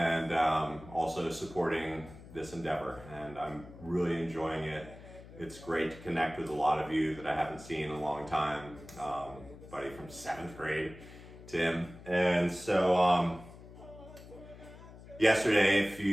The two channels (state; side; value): noise; left; hum, 17 dB below the sound